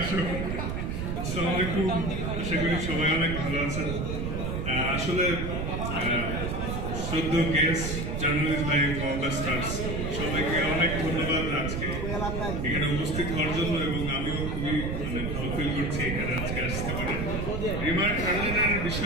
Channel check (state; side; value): noise; right; rumble, 2 dB below the sound